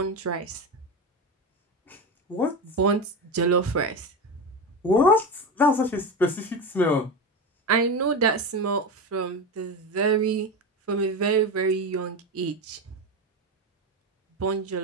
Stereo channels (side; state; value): both; normal; correlation 0.20